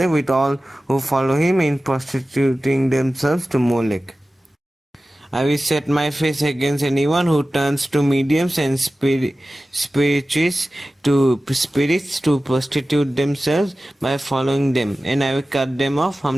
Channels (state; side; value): normal; both; correlation 0.95